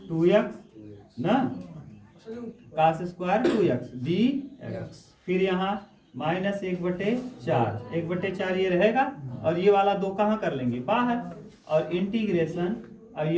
2x ना, cos स्क्वायर 2x dx। फिर यहाँ -1/4, 1/4 ये रहेगा, और ये वाला 2 कहाँ कर लेंगे? बाहर, और इंटीग्रेशन, अब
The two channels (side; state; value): both; identical; correlation 1.00